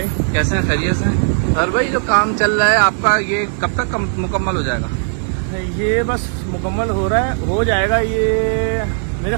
कैसे हैं, खैरियत से? सर भाई जो काम चल रहा है आपका ये कब तक मुकम्मल हो जाएगा? ये बस मुकम्मल हो रहा है, हो जाएगा ये मेरे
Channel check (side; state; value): left; silent; 58 dB below the other